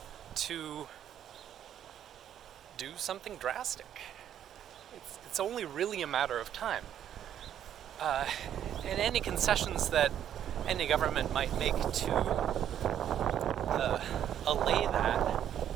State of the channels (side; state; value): left; quieter; 10.2 dB